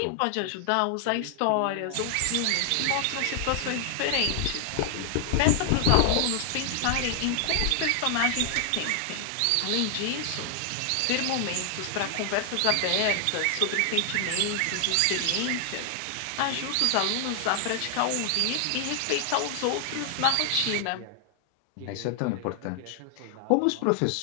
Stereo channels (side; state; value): both; different; correlation 0.00